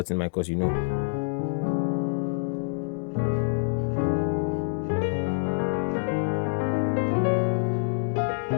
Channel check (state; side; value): silent; right; digital silence